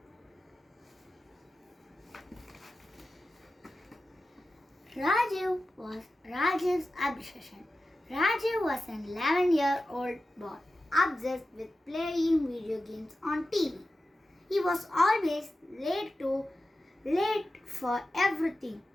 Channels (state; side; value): normal; both; correlation 0.93